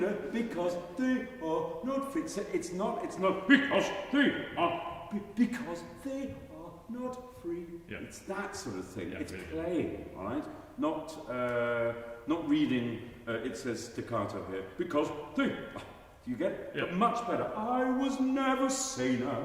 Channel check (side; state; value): both; identical; correlation 1.00